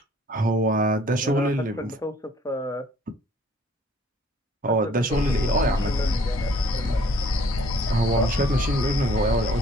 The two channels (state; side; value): normal; both; correlation 0.57